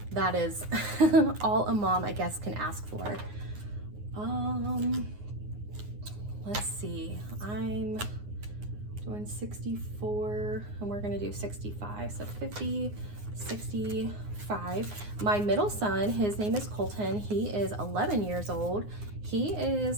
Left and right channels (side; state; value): left; late; 9.6 ms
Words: that is all a mom, I guess, can ask for. Let's see. I'm doing 64 and we're gonna do 65. So 50, 65. My middle son, his name is Colton. He is 11 years old. He